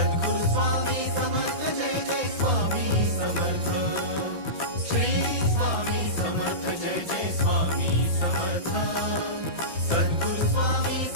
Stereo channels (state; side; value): late; left; 6.0 ms